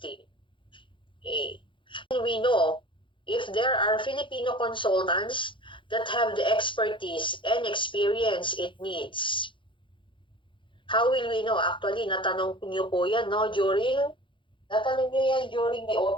Okay. And we know if there are Filipino consultants that have the expertise and experience it needs. How will we know? Actually, natanong niyo po yan, no? Natanong niyo yan during the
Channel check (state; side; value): late; right; 0.24 ms